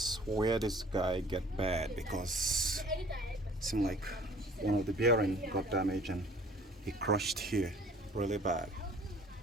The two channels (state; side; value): normal; both; correlation 0.51